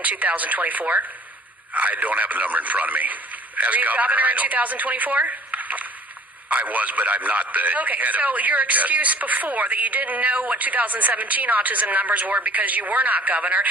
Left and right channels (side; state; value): both; normal; correlation 0.51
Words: in 2024? I don't have the number in front of me. Were you governor in 2024? I was, but I'm not the Okay, head so of your excuse before that you didn't know what 2017 autism numbers were because you were not governor,